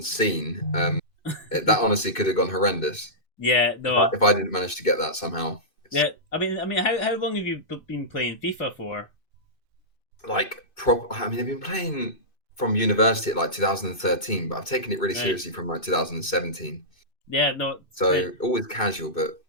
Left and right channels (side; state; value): right; late; 2.6 ms